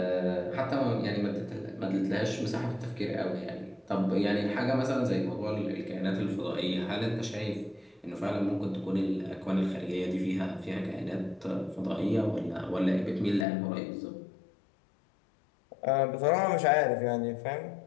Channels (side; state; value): right; drops out; at 13.5 s